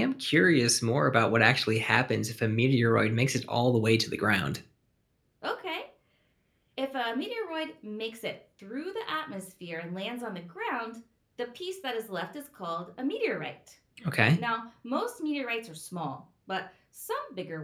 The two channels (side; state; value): both; identical; correlation 1.00